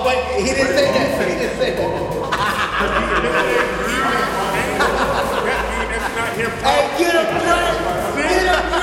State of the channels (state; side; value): identical; both; correlation 1.00